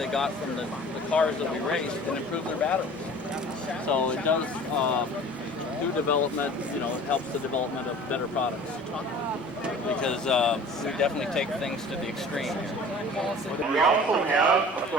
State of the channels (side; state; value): both; normal; correlation 0.44